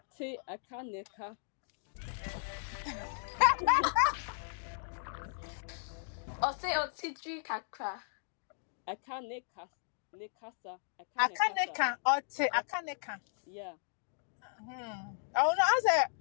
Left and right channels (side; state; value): right; silent; digital silence